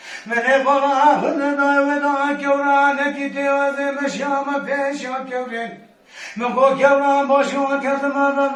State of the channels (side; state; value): both; identical; correlation 1.00